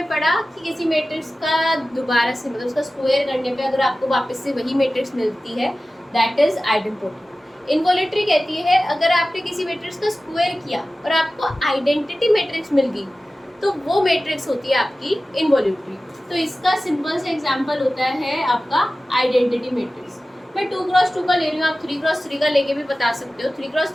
पढ़ा कि किसी मैट्रिक्स का दोबारा से, मतलब उसका स्क्वायर करने पे अगर आपको वापस से वही मैट्रिक्स मिलती है, दैट इज आइडेंटिटी। इनवोल्यूटरी कहती है अगर आपने किसी मैट्रिक्स का स्क्वायर किया और आपको आइडेंटिटी मैट्रिक्स मिल गई, तो वो मैट्रिक्स होती है आपकी इनवोल्यूटरी। तो इसका सिंपल से एग्जांपल होता है आपका आइडेंटिटी मैट्रिक्स। मैं 2x2 का ले रही हूँ, आप 3x3 का लेके भी बता सकते हो।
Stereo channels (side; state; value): both; normal; correlation 0.96